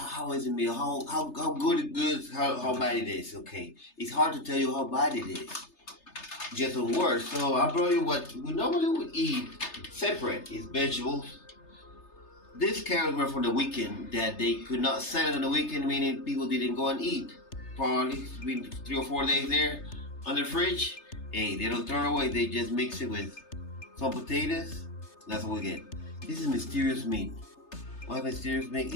is the meal? How good it is, how bad it is. Okay, it's hard to tell you how bad it is. Just a word. So I brought you what we normally would eat separate. It's vegetables. These carrots were for the weekend that they could not sell it on the weekend, meaning people didn't go and eat. Probably it's been 3 or 4 days there on the fridge. Hey, they don't throw it away. They just mix it with some potatoes. That's what we get. This is mysterious meat. What mysterious meat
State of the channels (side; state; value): right; late; 3.3 ms